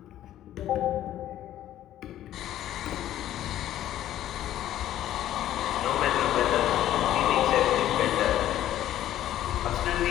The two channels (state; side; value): quieter; right; 12.6 dB